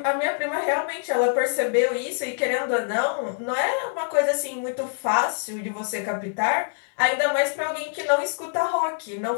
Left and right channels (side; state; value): right; silent; 62 dB below the other